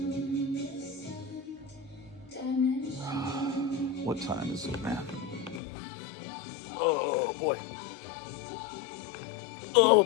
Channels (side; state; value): right; drops out; at 5.6 s